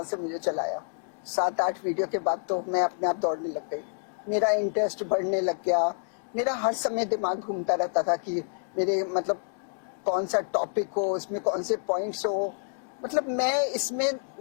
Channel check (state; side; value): silent; right; 59 dB below the other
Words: से मुझे चलाया। 7-8 वीडियो के बाद तो मैं अपने आप दौड़ने लग गई। मेरा इंटरेस्ट बढ़ने लग गया। मेरा हर समय दिमाग घूमता रहता था कि मेरे मतलब कौन सा टॉपिक हो, इसमें कौन से पॉइंट्स हो। मतलब मैं इसमें